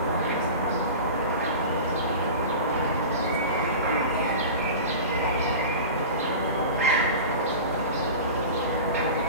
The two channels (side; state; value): both; inverted; correlation -0.32